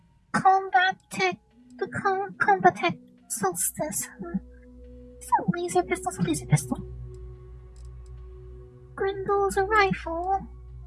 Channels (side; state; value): both; identical; correlation 1.00